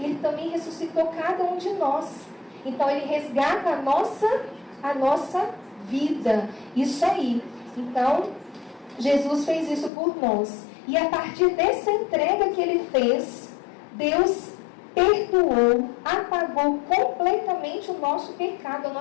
também ressuscitou cada um de nós. Então ele resgata a nossa vida. Isso aí. Então, Jesus fez isso por nós. E a partir dessa entrega que ele fez, Deus perdoou, apagou completamente o nosso pecado, a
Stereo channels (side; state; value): right; drops out; at 9.9 s